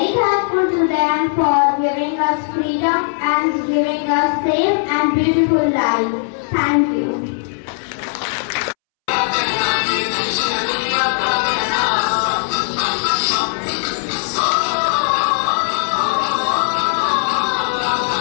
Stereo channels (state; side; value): silent; right; 67 dB below the other